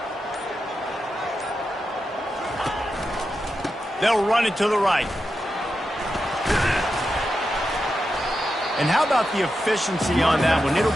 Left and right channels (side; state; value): both; normal; correlation 0.88